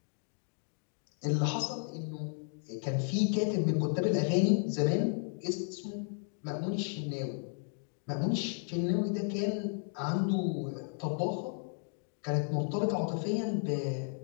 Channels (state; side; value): silent; right; 55 dB below the other